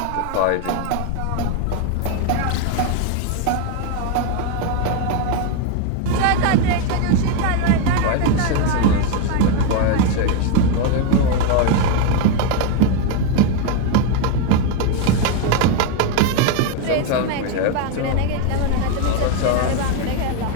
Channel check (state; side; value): different; both; correlation 0.01